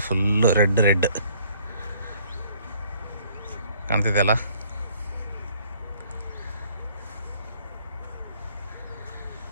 ಫುಲ್ಲು ರೆಡ್ ಕಾಣ್ತಿದೆಯಲ್ಲ.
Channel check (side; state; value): both; inverted; correlation -0.60